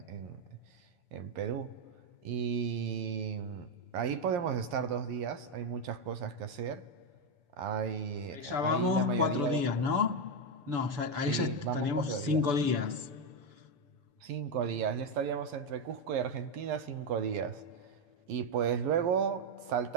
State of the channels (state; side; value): late; left; 7.0 ms